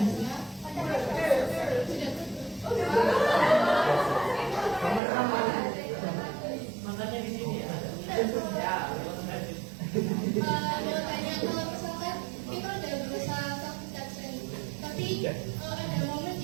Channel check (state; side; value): drops out; left; at 5.0 s